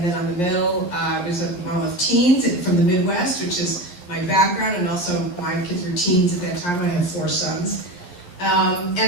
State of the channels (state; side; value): late; right; 11 ms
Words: then on the middle, I was a mom of teens from the Midwest, which is my background, and also my kids were teens at that time. I have 4 sons.